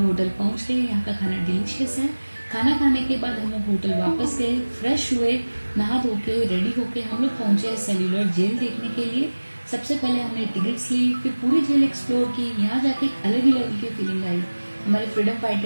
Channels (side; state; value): both; inverted; correlation -1.00